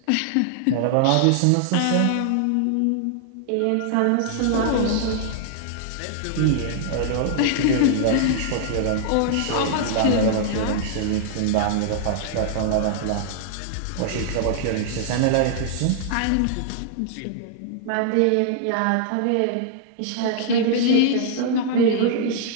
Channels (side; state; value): both; different; correlation -0.01